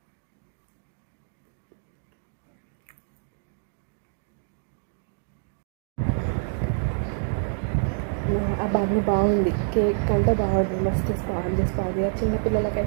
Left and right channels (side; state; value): left; silent; digital silence